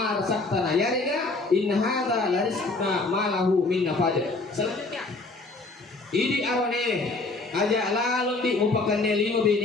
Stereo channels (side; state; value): right; quieter; 3.4 dB